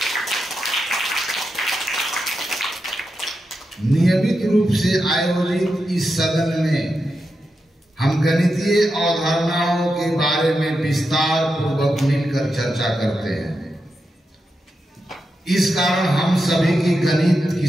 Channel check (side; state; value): both; normal; correlation 0.88